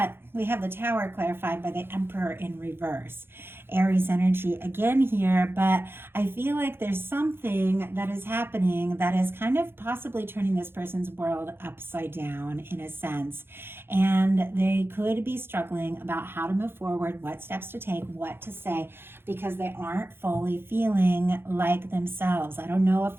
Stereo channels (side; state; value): left; late; 0.11 ms